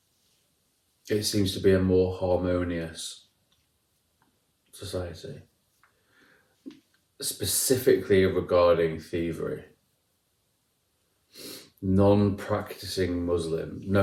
it seems to be a more harmonious society, specifically regarding thievery. Non-practicing Muslim,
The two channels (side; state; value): both; identical; correlation 1.00